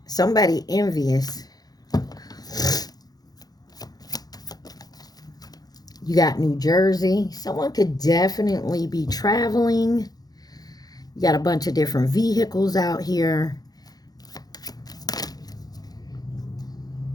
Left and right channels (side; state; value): right; late; 0.19 ms